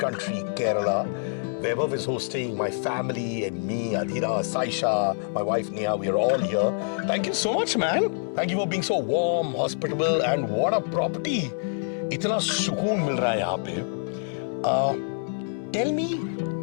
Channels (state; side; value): silent; right; digital silence